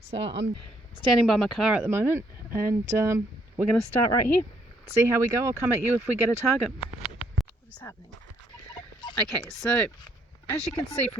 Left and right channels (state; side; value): normal; both; correlation 0.69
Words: I'm standing by my car at the moment, and we're going to start right here, see how we go. I'll come at you if we get a target. What is happening? Okay, so as you can see